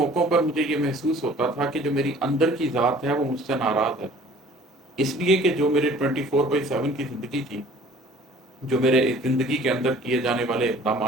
پر مجھے یہ محسوس ہوتا تھا کہ جو میری اندر کی ذات ہے وہ مجھ سے ناراض ہے، اس لیے کہ جو میرے 24/7 کی زندگی تھی، جو میرے زندگی کے اندر کیے جانے والے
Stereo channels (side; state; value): both; normal; correlation 0.51